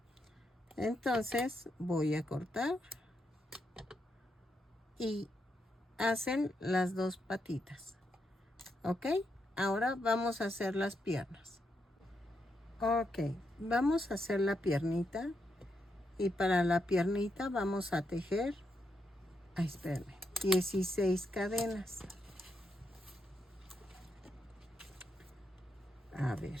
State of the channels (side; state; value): both; normal; correlation 0.81